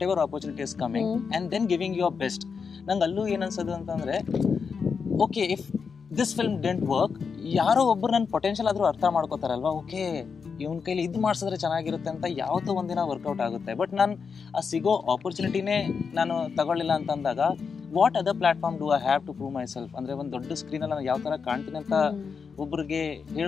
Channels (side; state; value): right; quieter; 5.7 dB